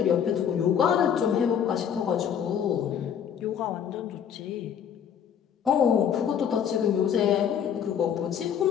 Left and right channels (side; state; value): right; quieter; 8.5 dB